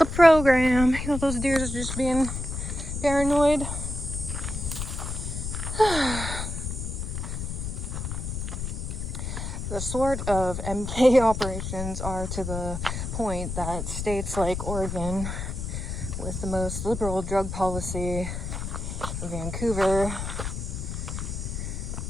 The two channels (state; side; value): noise; left; rumble, 4 dB below the sound